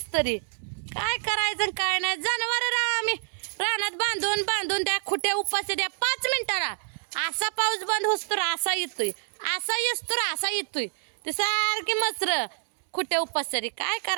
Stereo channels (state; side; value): silent; left; 60 dB below the other